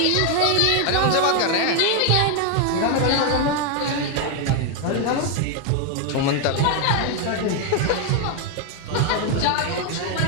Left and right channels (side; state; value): both; different; correlation 0.01